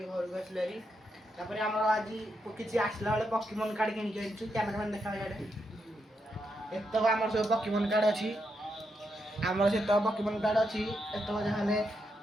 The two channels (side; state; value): both; normal; correlation 0.82